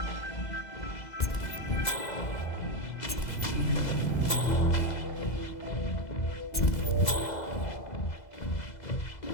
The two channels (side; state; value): right; late; 2.0 ms